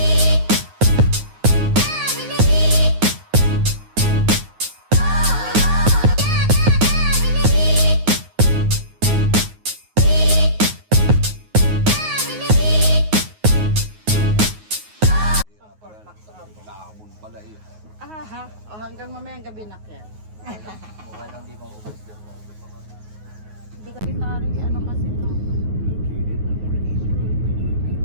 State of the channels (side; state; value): left; late; 9.4 ms